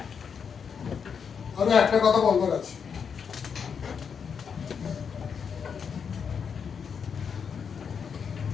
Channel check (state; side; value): quieter; right; 6.6 dB